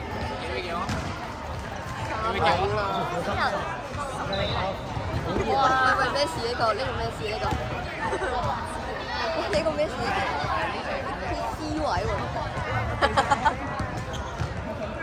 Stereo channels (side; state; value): both; identical; correlation 1.00